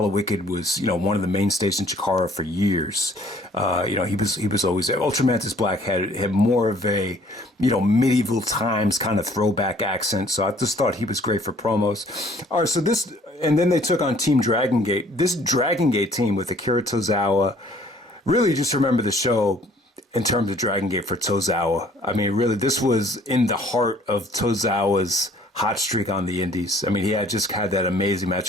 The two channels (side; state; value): both; normal; correlation 0.57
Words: Wicked was, you know, one of the mainstays in Chikara for years. You know, he was always there. Ultramantis Black had more of a, you know, medieval times kind of throwback accent. So I just thought he was great for promos. All right, so this, and then they took on Team Dragon Gate. This Dragon Gate team with Akira Tozawa, really just remember the show in terms of Dragon Gate for Tozawa. I mean, really, this was in the heart of Tozawa's hot streak on the indies. I mean, he had just had that amazing match